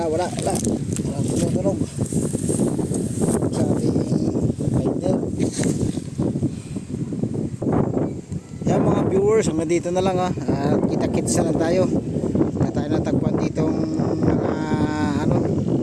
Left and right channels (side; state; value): both; identical; correlation 1.00